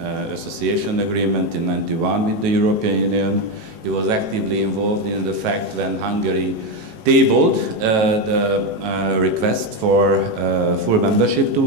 association agreement in '91 with the European Union. He was actively involved in the fact when Hungary tabled the request for full membership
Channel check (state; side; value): late; left; 18 ms